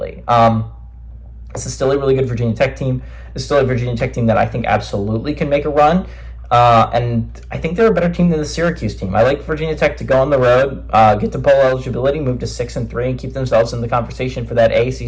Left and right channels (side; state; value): both; identical; correlation 1.00